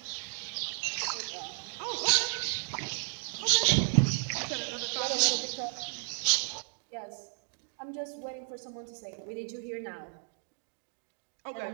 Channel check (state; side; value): silent; left; 56 dB below the other